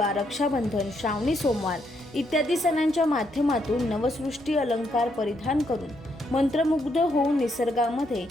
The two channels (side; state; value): both; normal; correlation 0.76